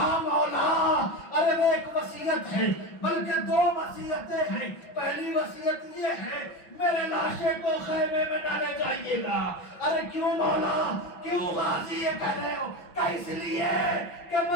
مولا ارے وہ ایک وصیت ہے، بلکہ دو وصیتیں ہیں۔ پہلی وصیت یہ ہے میرے لاشے کو خیمے میں ڈالے جائیے گا۔ ارے کیوں مولا، کیوں غازی یہ کہہ رہے ہو؟ کہ اس لیے کہ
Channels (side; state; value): right; late; 5.8 ms